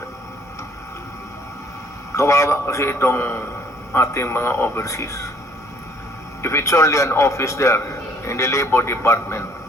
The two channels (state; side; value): normal; both; correlation 0.59